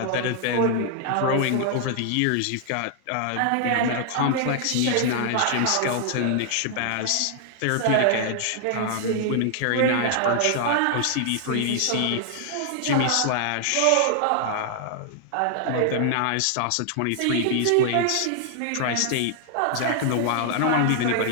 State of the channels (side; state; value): both; different; correlation 0.00